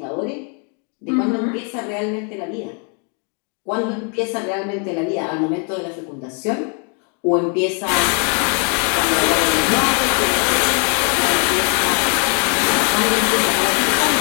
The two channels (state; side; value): quieter; right; 37.5 dB